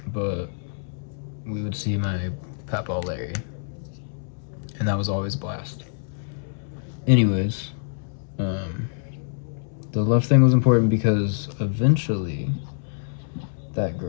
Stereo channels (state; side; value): silent; right; 61 dB below the other